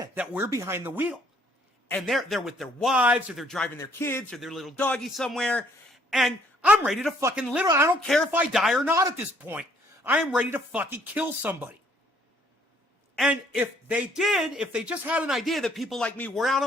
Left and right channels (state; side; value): normal; both; correlation 0.64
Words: that we're behind the wheel. And they're with their wives, or they're driving their kids, or their little doggy somewhere. And I'm ready to fucking literally, I don't care if I die or not at this point. I am ready to fucking kill somebody. And if they just had an idea that people like me were out